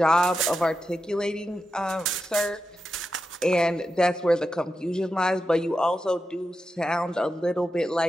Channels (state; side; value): normal; both; correlation 0.89